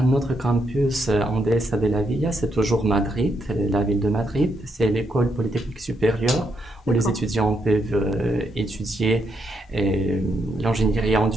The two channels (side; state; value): both; normal; correlation 0.78